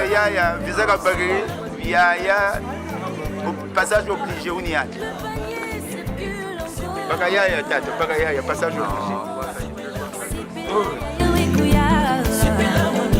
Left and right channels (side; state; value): both; identical; correlation 1.00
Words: Visaka Bagri, Yaya, passage obligé, Ouniyaya. Bagayaya, Tato, Bagayaya, passage obligé.